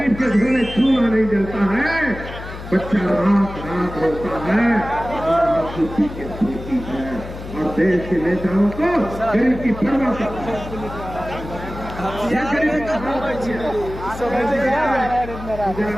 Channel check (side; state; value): left; noise; hum, 11 dB below the sound